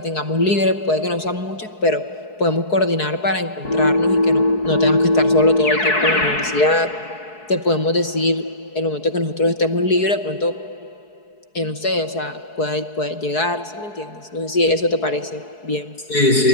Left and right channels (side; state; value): right; late; 4.7 ms